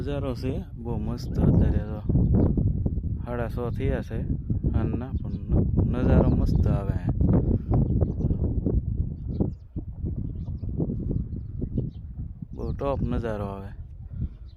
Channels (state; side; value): identical; both; correlation 1.00